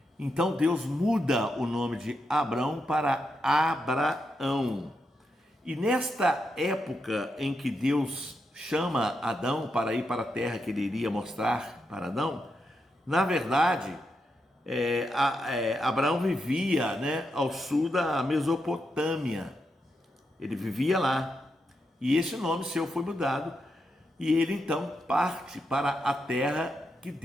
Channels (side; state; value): both; normal; correlation 0.84